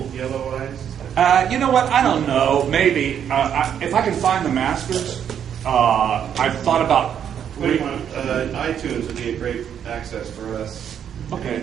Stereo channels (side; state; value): left; quieter; 8.8 dB